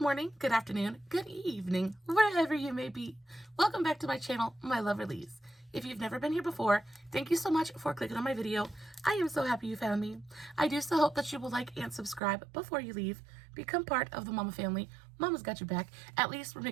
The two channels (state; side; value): drops out; left; at 12.2 s